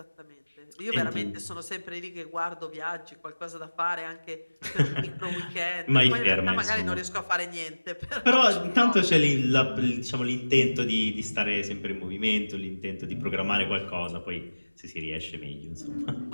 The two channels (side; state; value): both; inverted; correlation -1.00